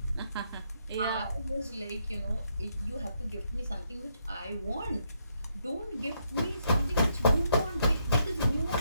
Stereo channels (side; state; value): both; inverted; correlation -0.76